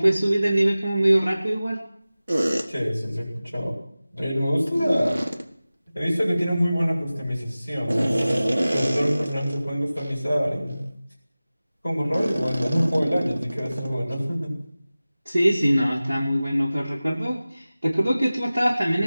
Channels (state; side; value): inverted; both; correlation -0.97